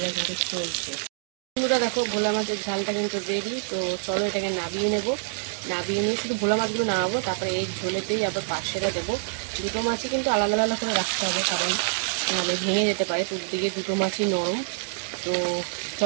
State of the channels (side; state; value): left; silent; digital silence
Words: কিন্তু চলছে। বন্ধুরা দেখো ভোলা মাছের ঝালটা কিন্তু রেডি। তো চলো এটাকে নাবিয়ে নেব। নাবিয়ে নিয়ে শুধু ভোলা মাছগুলো নামাবো, তারপরে এই ঝোলেতেই আবার পার্শেটা দেবো। দুটো মাছই কিন্তু আলাদা আলাদা করে রাখতে হবে, কারণ নাহলে ভেঙে যেতে পারে। দিকে দুটো মাছই নরম। তো